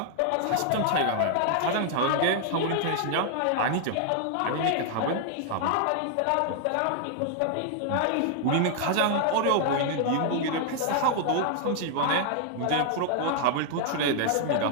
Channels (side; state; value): both; different; correlation 0.00